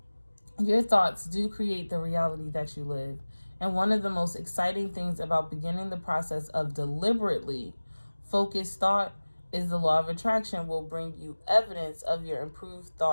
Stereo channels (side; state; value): both; inverted; correlation -1.00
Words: Your thoughts do create the reality that you live. And one of the most exciting things about beginning the process of deliberately focused thought is the law of attraction will bring you evidence of your improved